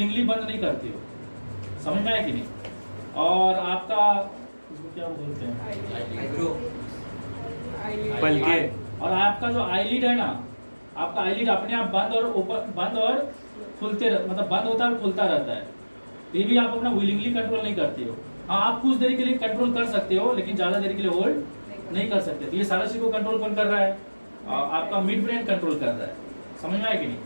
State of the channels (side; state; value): both; inverted; correlation -1.00